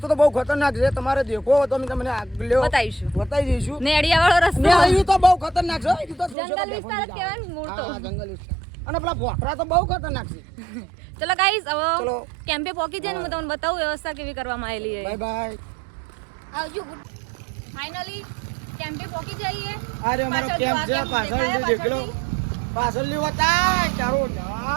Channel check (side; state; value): left; drops out; at 6.4 s